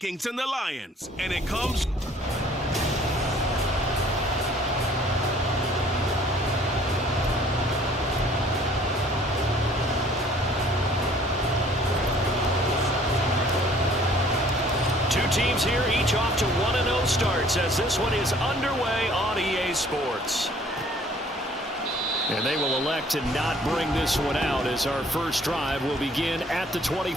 and the Lions, and it comes... Teams here, each off to 1-0 starts as this one is underway on EA Sports. And they will elect to not bring this one out as our first drive will begin at the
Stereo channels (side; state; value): both; normal; correlation 0.56